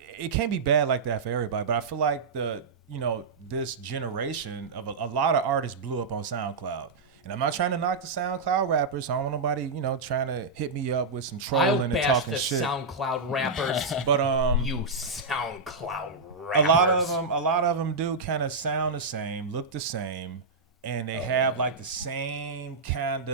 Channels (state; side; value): quieter; left; 3.9 dB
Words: can't be bad like that for everybody. But I feel like this generation of a lot of artists blew up on SoundCloud. And I'm not trying to knock the SoundCloud rappers. So I don't want nobody, trying to hit me up with some trolling and talking shit. I'll bash the SoundCloud rappers. But you SoundCloud rappers. A lot of them do kind of sound the same, look the same, and they have like the same kind